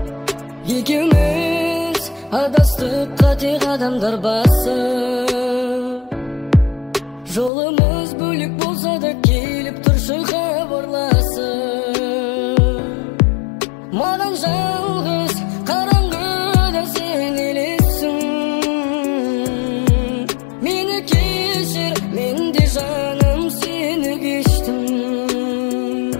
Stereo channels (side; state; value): right; drops out; at 7.5 s